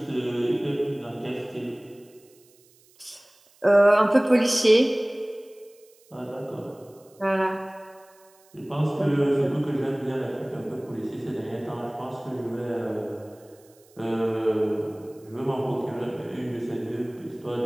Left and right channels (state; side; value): noise; right; hiss, 30 dB below the sound